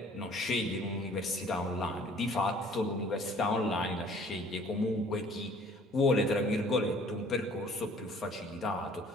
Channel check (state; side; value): normal; both; correlation 0.54